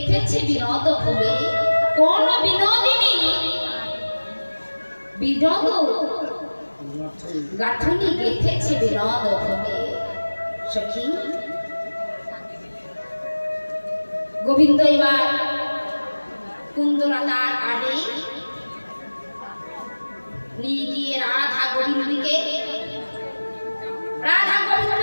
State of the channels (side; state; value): both; inverted; correlation -1.00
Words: বিনোদ ফুলে কোন বিনোদিনী বিনোদ গাঁথনি গেথেছে বিনোদ ফুলে সখী গোবিন্দ এবার কুন্দলতার আড়ে নিয়ে গিয়ে রাধা গোবিন্দকে